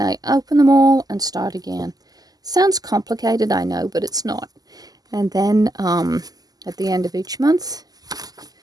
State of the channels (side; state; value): left; late; 0.18 ms